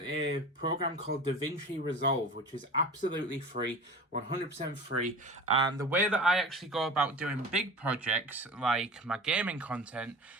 program called DaVinci Resolve, which is absolutely free, 100% free. And the way that I actually go about doing big projects like my gaming content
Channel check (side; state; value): both; normal; correlation 0.35